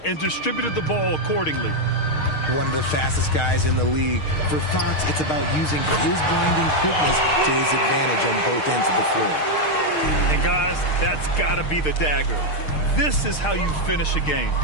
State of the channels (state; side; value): late; right; 6.5 ms